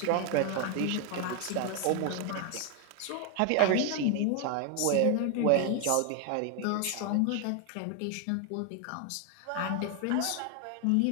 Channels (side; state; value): both; different; correlation 0.01